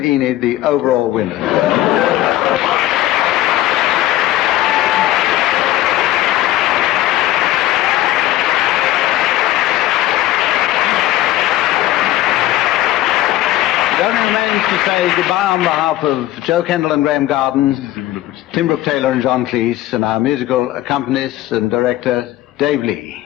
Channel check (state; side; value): quieter; right; 14.8 dB